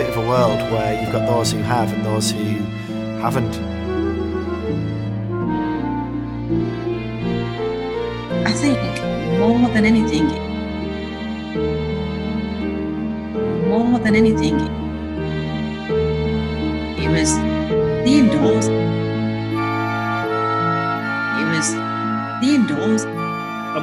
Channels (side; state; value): both; identical; correlation 1.00